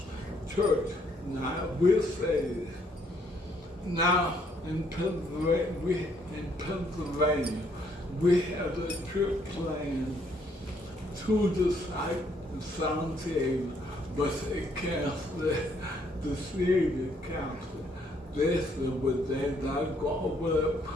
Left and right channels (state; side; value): normal; both; correlation 0.69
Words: church. Now, I will say this. Now, in Pennsylvania, we have a trip planned to the site in San Diego, but they canceled it. The city council. They said, but they're not going to open up